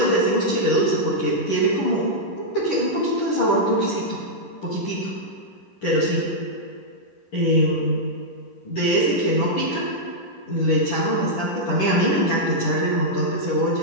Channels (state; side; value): late; right; 10 ms